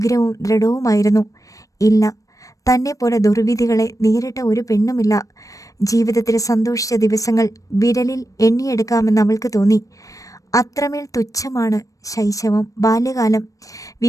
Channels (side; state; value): right; late; 0.16 ms